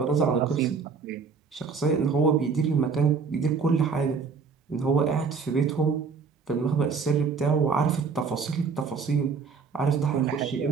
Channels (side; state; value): left; quieter; 5.3 dB